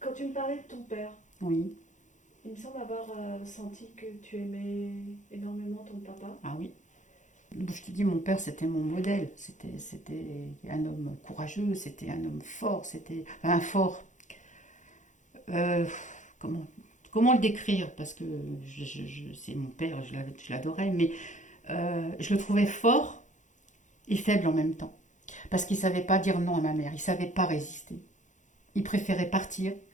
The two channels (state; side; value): late; right; 0.36 ms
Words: tu me parlais de ton père, Oui, il me semble avoir senti que tu aimais énormément ton papa. ah oui. Je te dis, mon père, c'était mon modèle. C'était un homme courageux, c'était un homme fort, c'était un fort. Euh, comment, comment le décrire? Parce que c'est mon père, je l'adorais, mais je le trouvais fort et faible en même temps. Parce qu'il ne savait pas dire non à ma mère, il ne savait pas résister. Il préférait partir,